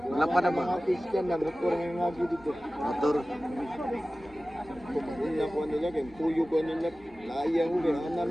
Malapad na ba? Mga Christian na motor ng ngagi dito. Motor. ko maguna ko nila kay tuyo ko nila. Layang ko kay ana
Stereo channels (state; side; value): normal; both; correlation 0.96